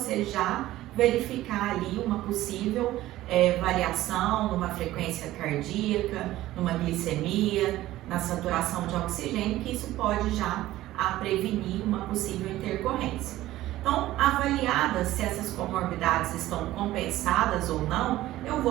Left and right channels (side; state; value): left; quieter; 15.5 dB